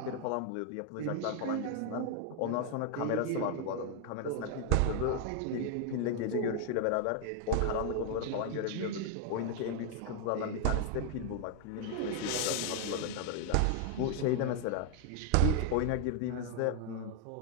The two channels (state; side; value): different; both; correlation 0.00